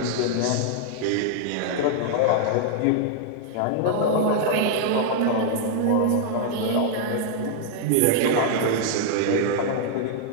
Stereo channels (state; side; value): different; both; correlation -0.01